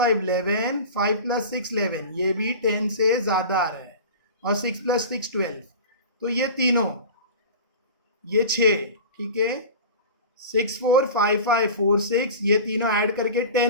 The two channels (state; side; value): inverted; both; correlation -0.34